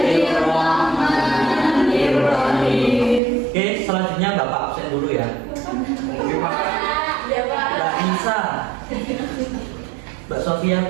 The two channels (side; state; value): left; drops out; at 3.2 s